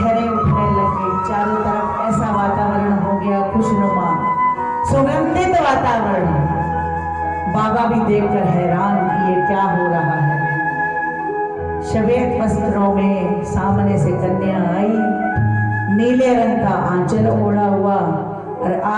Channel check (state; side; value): identical; both; correlation 1.00